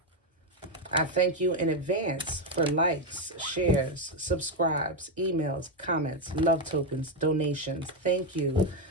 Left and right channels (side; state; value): both; normal; correlation 0.06